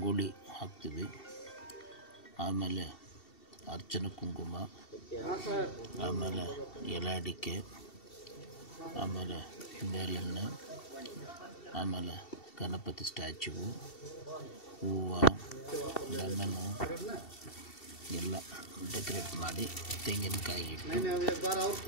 ಹಾಕ್ತೀವಿ, ಆಮೇಲೆ ಅರ್ಚನೆ ಕುಂಕುಮ, ಆಮೇಲೆ ಎಲೆ ಅಡಿಕೆ, ಆಮೇಲೆ ಬೇಳೆಣ್ಣೆ, ಆಮೇಲೆ ಗಣಪತಿ ಸ್ಟ್ಯಾಚ್ಯೂ, ಹೂವು, ಲೆಮನ್ನು ಎಲ್ಲ ಡೆಕೋರೇಟ್ ಮಾಡಿ ತೆಂಗಿನಕಾಯಿ ಇಟ್ಟು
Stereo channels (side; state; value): right; late; 2.7 ms